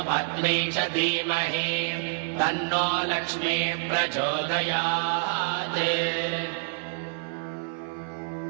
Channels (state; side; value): silent; left; 60 dB below the other